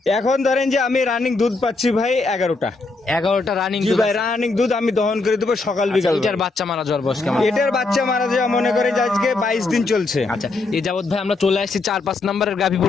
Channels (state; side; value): quieter; right; 3.5 dB